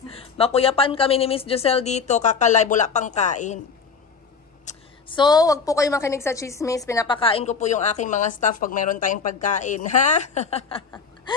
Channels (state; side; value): quieter; right; 5.5 dB